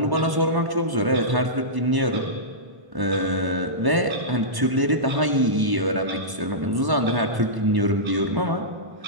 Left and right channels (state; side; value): late; left; 1.0 ms